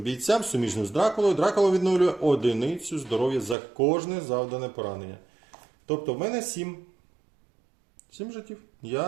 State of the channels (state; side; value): drops out; left; at 3.6 s